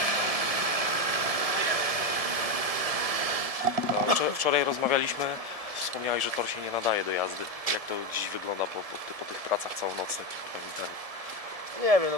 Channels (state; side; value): late; left; 1.7 ms